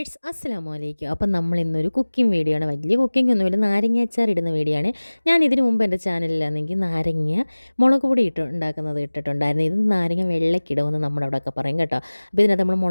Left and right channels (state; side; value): inverted; both; correlation -1.00